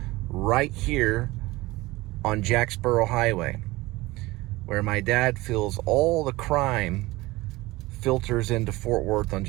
right here on Jacksboro Highway, where my dad feels all the crime filters into Fort Worth on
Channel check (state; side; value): quieter; left; 20.2 dB